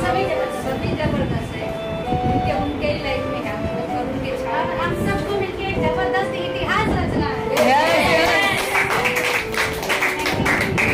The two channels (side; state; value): both; identical; correlation 1.00